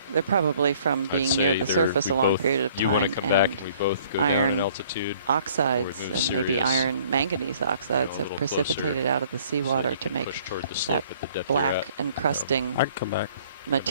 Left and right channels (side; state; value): both; inverted; correlation -0.57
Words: probably from being near the surface a long period of time, and iron oxides and maybe iron manganese oxides have precipitated out of the seawater to make that black encrusting